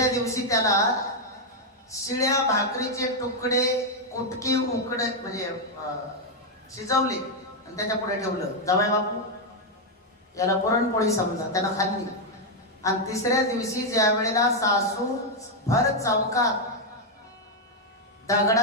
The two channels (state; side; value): normal; both; correlation 0.01